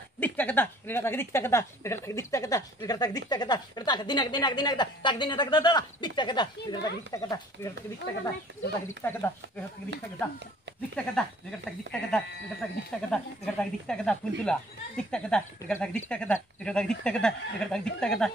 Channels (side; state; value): both; normal; correlation 0.54